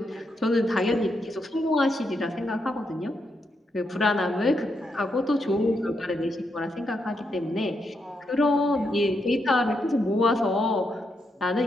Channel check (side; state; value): both; normal; correlation 0.81